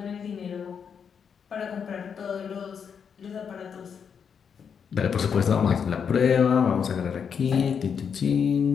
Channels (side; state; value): right; quieter; 7.0 dB